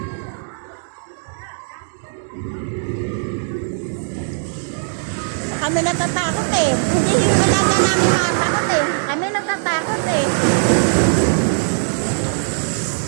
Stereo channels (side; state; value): left; silent; digital silence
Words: Kami natatakot eh. Hindi yung alaga namin matatakot eh. Kami natatakot eh.